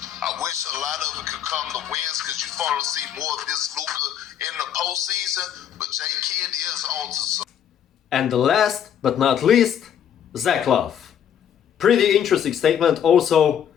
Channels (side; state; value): right; quieter; 9.3 dB